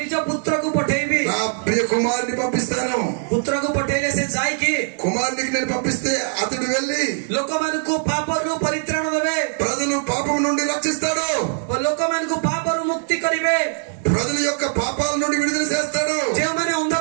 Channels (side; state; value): left; silent; digital silence